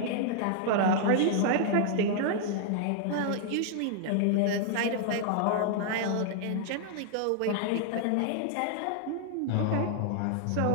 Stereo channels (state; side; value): different; both; correlation -0.01